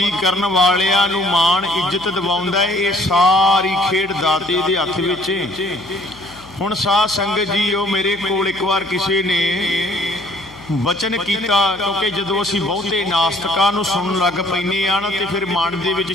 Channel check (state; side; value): noise; left; hum, 23 dB below the sound